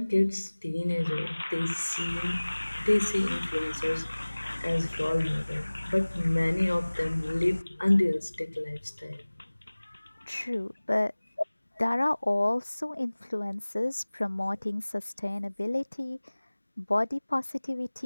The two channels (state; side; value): inverted; both; correlation -1.00